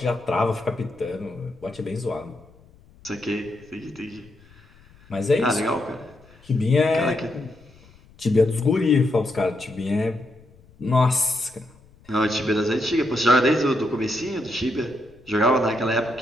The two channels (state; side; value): noise; left; rumble, 27 dB below the sound